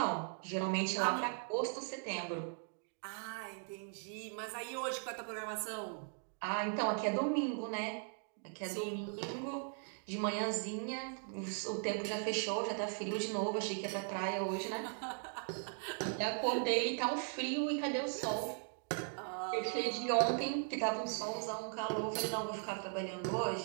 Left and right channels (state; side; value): silent; left; 52 dB below the other